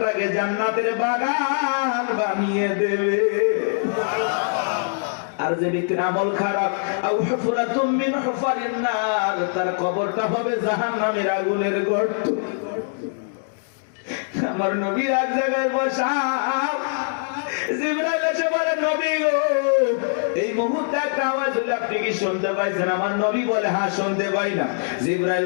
জান্নাতের বাগান বানিয়ে দেবে। আর যে ব্যক্তির আমল খারাপ, আও হুফরাতুম মিন হুফারিন নার, তার কবরটা হবে জাহান্নামের আগুনের গর্ত। আমার নবী এক জায়গায় বসা, জিবরাইল এসে বলে নবী গো এই মুহূর্তে একটা আওয়াজ হলো, আপনি কি শুনতে পাইছেন? আমার নবী বলে, হ্যাঁ শুনতে পাই না। জিবরাইল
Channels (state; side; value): silent; right; digital silence